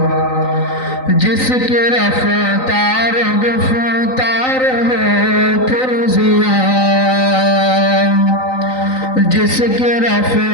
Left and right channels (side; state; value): right; late; 3.9 ms